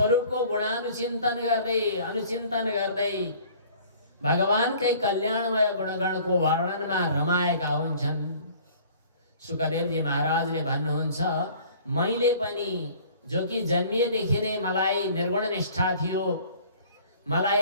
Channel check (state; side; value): inverted; both; correlation -0.51